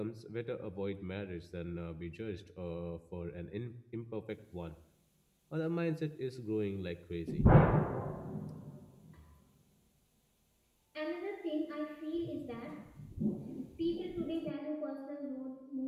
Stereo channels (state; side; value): identical; both; correlation 1.00